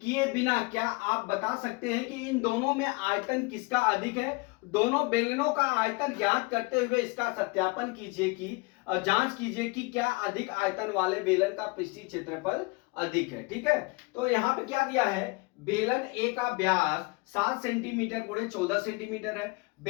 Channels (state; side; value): quieter; right; 27.3 dB